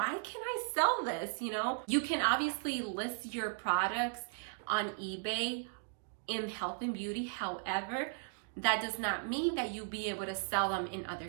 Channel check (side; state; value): left; silent; digital silence